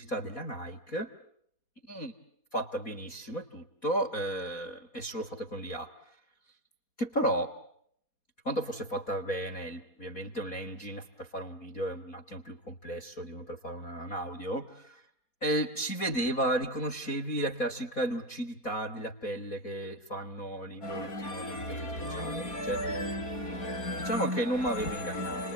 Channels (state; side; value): late; right; 4.1 ms